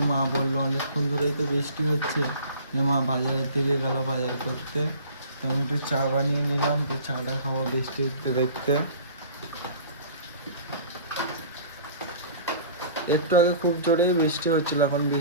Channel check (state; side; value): inverted; both; correlation -0.46